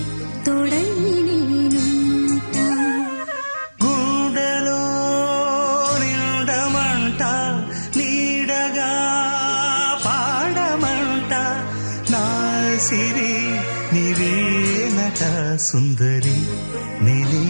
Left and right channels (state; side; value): inverted; both; correlation -1.00